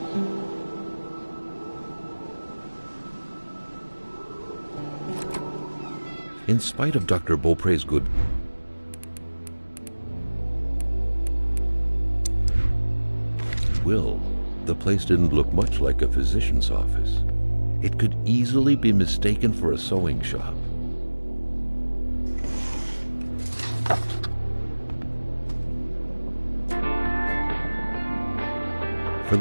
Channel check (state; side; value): inverted; both; correlation -1.00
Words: In spite of Dr. Beaupre's good will, the place didn't look much like a physician's office. It could easily be mistaken for a sewing shop. For